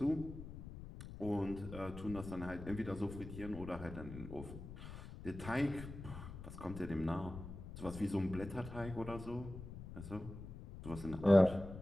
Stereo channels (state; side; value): noise; left; rumble, 11 dB below the sound